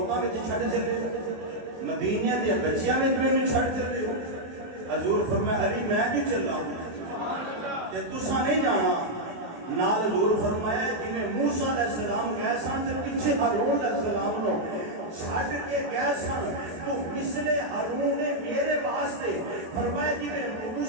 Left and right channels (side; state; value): left; late; 23 ms